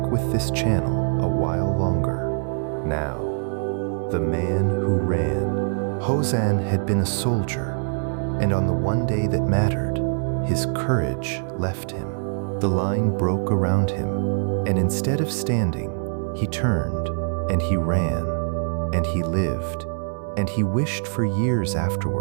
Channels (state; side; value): silent; left; digital silence